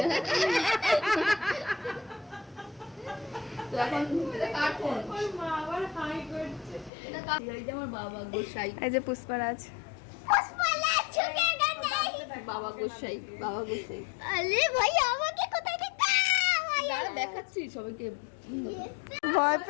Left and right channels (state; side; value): drops out; right; at 6.9 s